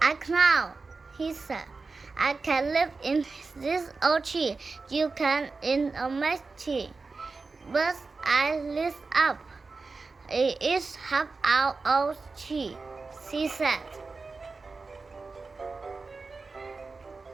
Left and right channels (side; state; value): left; quieter; 4.1 dB